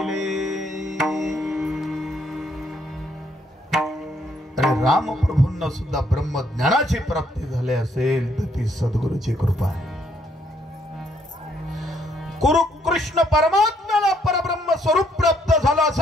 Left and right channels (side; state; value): both; normal; correlation 0.70